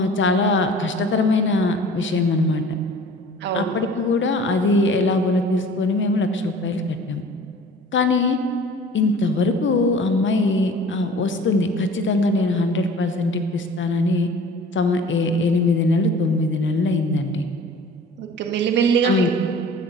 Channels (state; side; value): normal; both; correlation 0.45